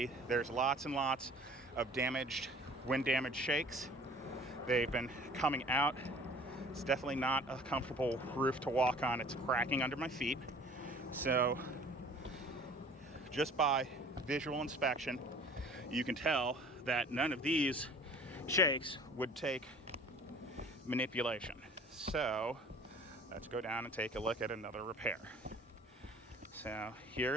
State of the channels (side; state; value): both; normal; correlation 0.48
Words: there's lots and lots of wind damaged shakes. They've been coming out. It's definitely not a comfortable roof to walk on. It's cracking under my feet. So just by visual inspection, you can tell that none of these shakes would take manipulation. So let's go down and take a look at another repair. So